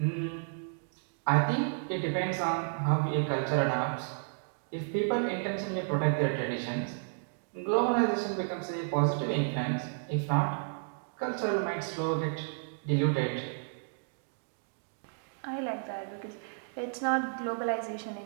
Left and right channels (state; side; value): silent; left; digital silence